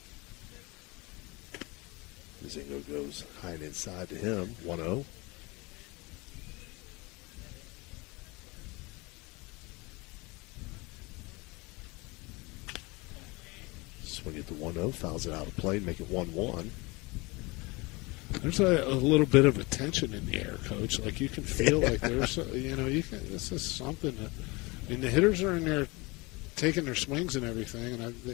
Mazingo goes high and inside to him, 1-0. Swing it to 1-0, fouls it out of play, make it 1-1. There's a little bit of a tension in the air, Coach. Like, you can feel like there's, this is something that, I mean, the hitters are in there taking their swings and everything, and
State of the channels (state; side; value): quieter; right; 25.2 dB